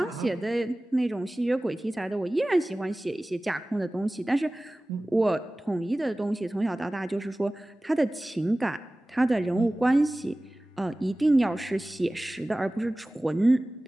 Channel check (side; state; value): both; normal; correlation 0.98